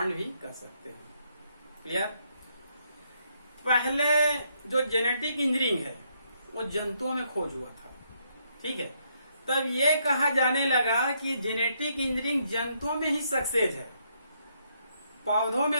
भी कर सकते हैं। क्लियर। पहले जो जेनेटिक इंजीनियरिंग है वो जंतुओं में खोज हुआ था, ठीक है। तब ये कहा जाने लगा कि जेनेटिक इंजीनियरिंग जंतुओं में ही सक्सेस है, पौधों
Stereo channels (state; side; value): inverted; both; correlation -0.74